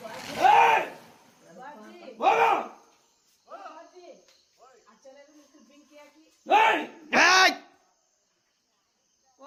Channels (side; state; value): both; identical; correlation 1.00